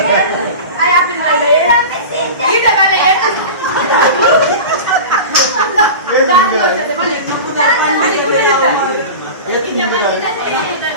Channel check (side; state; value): both; inverted; correlation -0.31